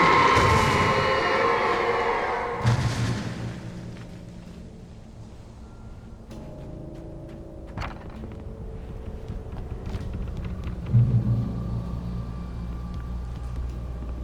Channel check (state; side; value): identical; both; correlation 1.00